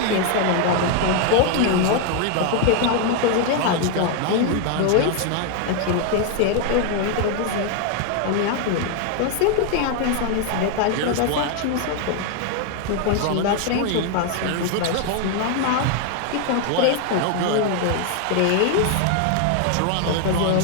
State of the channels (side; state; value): both; different; correlation 0.00